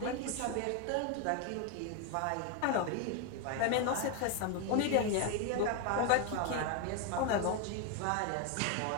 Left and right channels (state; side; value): different; both; correlation 0.01